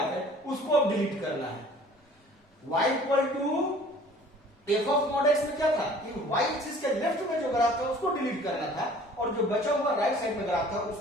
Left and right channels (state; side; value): normal; both; correlation 0.50